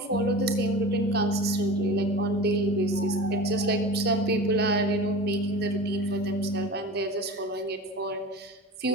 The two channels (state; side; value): normal; both; correlation 0.33